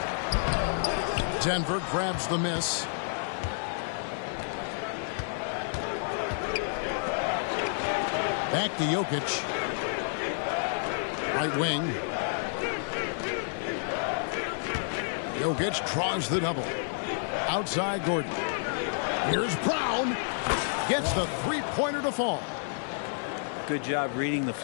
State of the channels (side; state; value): right; silent; 58 dB below the other